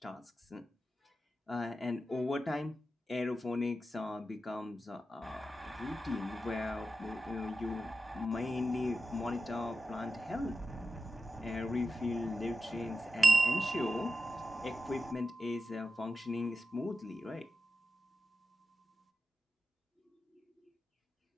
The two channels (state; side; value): normal; both; correlation 0.91